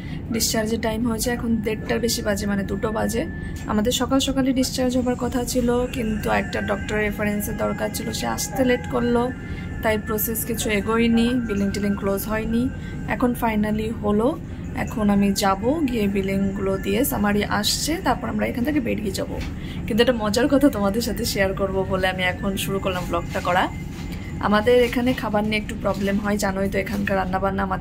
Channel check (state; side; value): identical; both; correlation 1.00